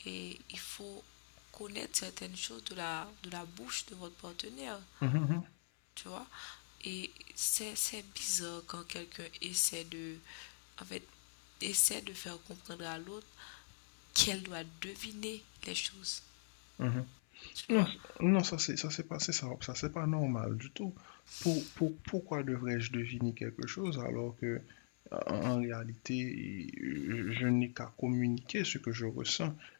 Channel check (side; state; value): right; silent; 50 dB below the other